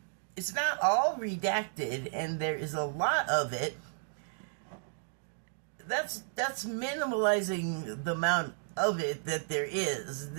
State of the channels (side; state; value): left; silent; digital silence